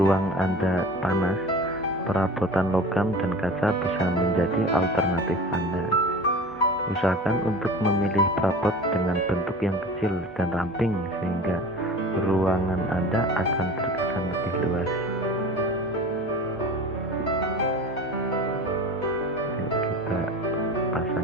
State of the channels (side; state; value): left; noise; hum, 26 dB below the sound